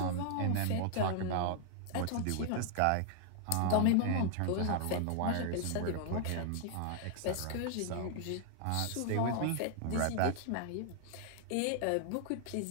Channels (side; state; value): both; different; correlation 0.00